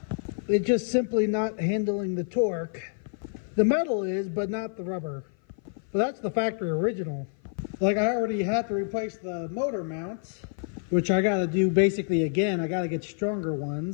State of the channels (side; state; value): right; silent; 55 dB below the other